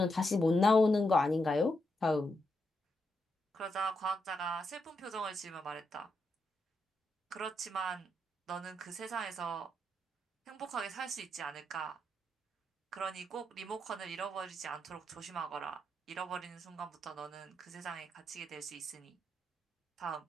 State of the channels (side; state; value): both; normal; correlation 0.82